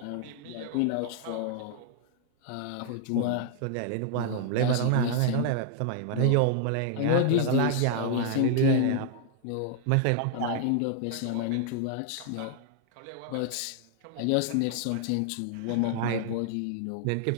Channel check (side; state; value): both; different; correlation 0.00